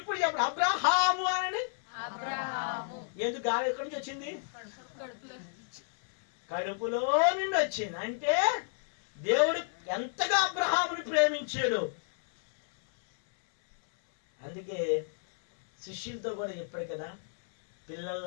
చెప్పండి. అబ్రాహాము అనండి. ఎందుకు గాలి ఎక్కడి నుంచి వచ్చింది? కడుపులో నుండి వచ్చింది. అంటే దేవుడు ఎంతగా అబ్రహాముని ప్రేమించాడు. అందుకే శిష్యులతో కూడా చెప్పాడు కదా,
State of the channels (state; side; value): silent; right; 57 dB below the other